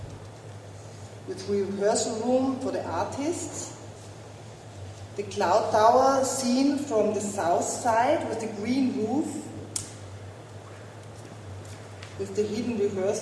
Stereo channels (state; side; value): identical; both; correlation 1.00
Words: with rehearsal room for the artists. The cloud tower seen from the south side with the green roof, with the hidden